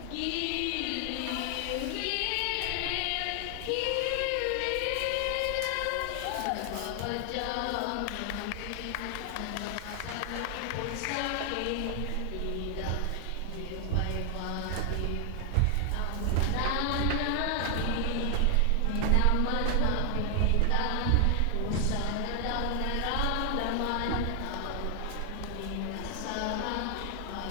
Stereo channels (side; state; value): both; different; correlation 0.00